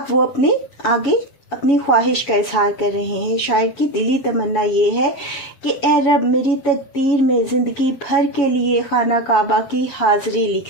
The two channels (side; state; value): right; late; 7.1 ms